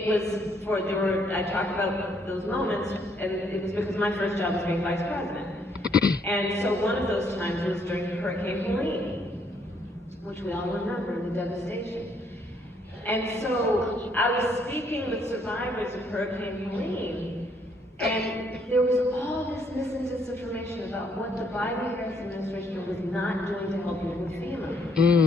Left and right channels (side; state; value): both; normal; correlation 0.69